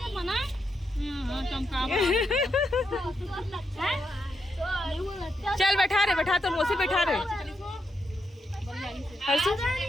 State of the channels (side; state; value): both; normal; correlation 0.82